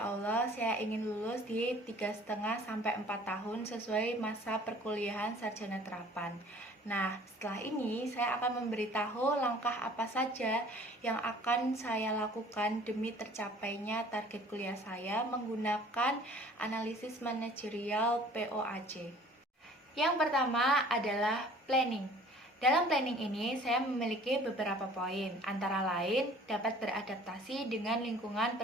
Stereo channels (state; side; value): normal; both; correlation 0.51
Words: Allah saya ingin lulus di 3,5 sampai 4 tahun sesuai masa perkuliahan sarjana terapan. Nah, setelah ini saya akan memberitahu langkah apa saja yang akan saya lakukan demi tercapainya target kuliah saya menggunakan analisis manajerial POAC. Yang pertama adalah planning. Dalam planning ini, saya memiliki beberapa poin, antara lain dapat beradaptasi dengan lingkungan